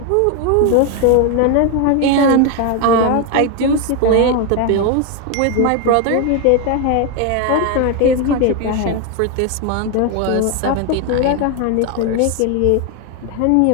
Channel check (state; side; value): different; both; correlation 0.01